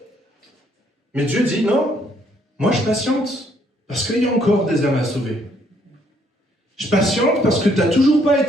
». Mais Dieu dit « Non, moi je patiente. Parce qu'il y a encore des âmes à sauver. Je patiente parce que tu n'as toujours pas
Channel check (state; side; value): normal; both; correlation 0.68